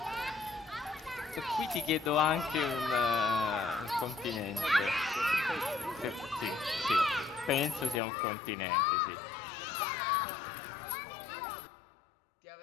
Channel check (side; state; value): right; drops out; at 8.0 s